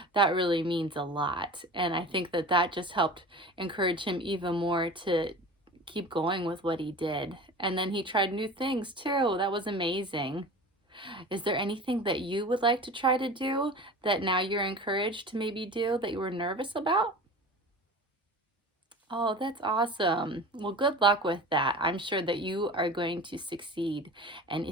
that really means a lot. And I think that that just helped encourage him even more to keep going with what he did. And then he tried new things too. That was amazing. Is there anything that you would like to try to do that now you're encouraged to maybe do that you were nervous about? Oh, that's awesome. Well, good luck with that. I'm sure that you are going to succeed. And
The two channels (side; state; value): both; normal; correlation 0.36